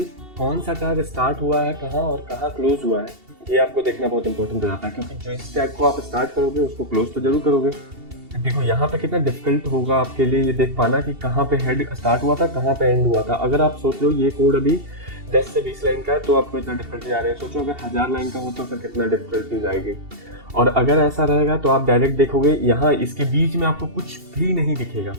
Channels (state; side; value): late; left; 2.7 ms